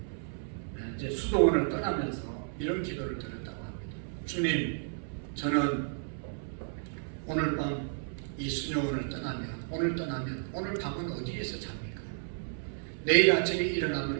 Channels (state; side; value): silent; left; 56 dB below the other